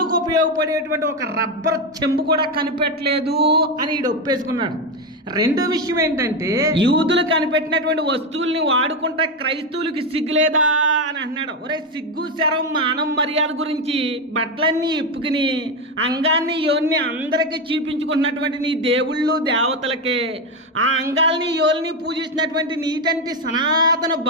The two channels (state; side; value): normal; both; correlation 0.11